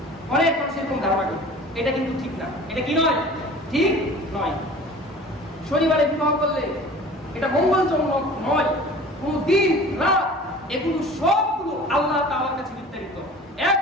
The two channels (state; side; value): normal; both; correlation 0.43